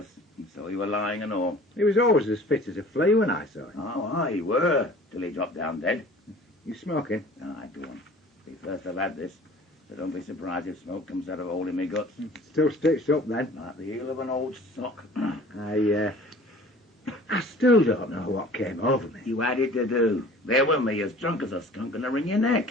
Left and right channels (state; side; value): normal; both; correlation 0.47